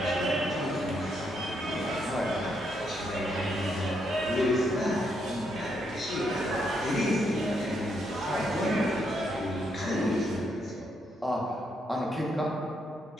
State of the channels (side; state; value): both; normal; correlation 0.77